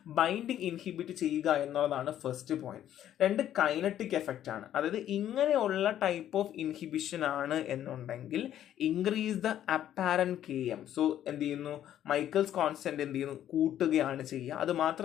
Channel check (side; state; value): right; quieter; 11.3 dB